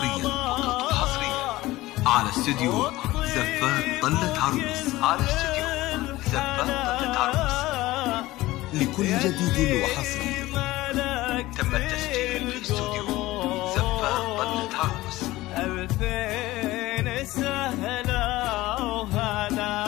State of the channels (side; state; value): right; quieter; 18.0 dB